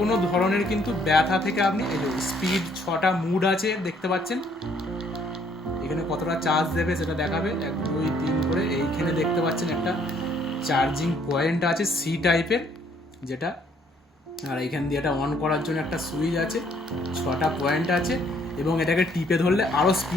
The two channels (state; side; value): normal; both; correlation 0.65